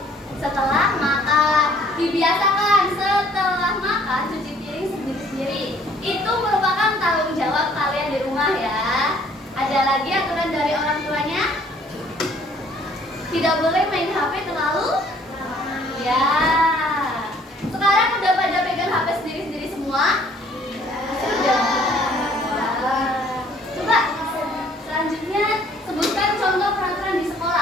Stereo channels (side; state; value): both; normal; correlation 0.59